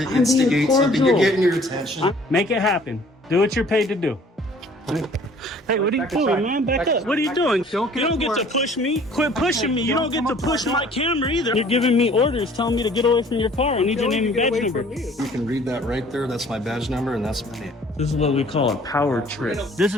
I'm instigate being something. You're cordial. getting your attention. Make it happen. Do what you're paid to do. Hey, what are you doing, man? Back up. What are you doing? You don't get to push me. Quit pushing me. You don't get to push my camera either. You're giving me orders, telling me to get away from your car. I need your name and badge number. You can read that right there. That's my badge number, and that's my name. This is what we call a power trip. This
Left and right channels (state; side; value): normal; both; correlation 0.54